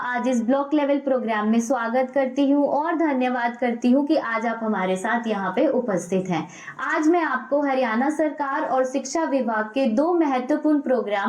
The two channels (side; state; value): both; identical; correlation 1.00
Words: आज इस ब्लॉक लेवल प्रोग्राम में स्वागत करती हूँ और धन्यवाद करती हूँ कि आज आप हमारे साथ यहाँ पे उपस्थित हैं। आज मैं आपको हरियाणा सरकार और शिक्षा विभाग के 2 महत्वपूर्ण